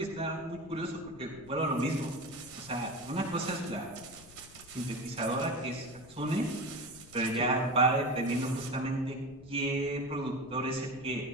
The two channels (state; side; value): noise; left; rumble, 20 dB below the sound